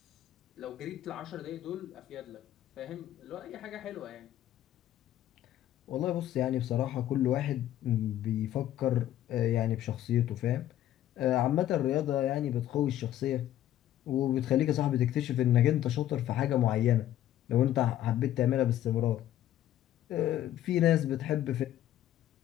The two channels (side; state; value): right; quieter; 12.5 dB